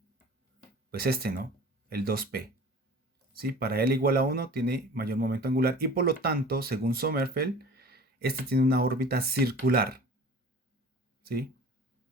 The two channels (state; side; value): normal; both; correlation 0.42